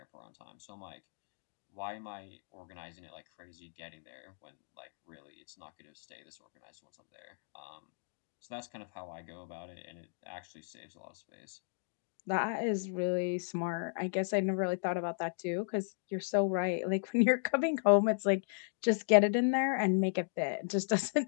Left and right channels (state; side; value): silent; right; digital silence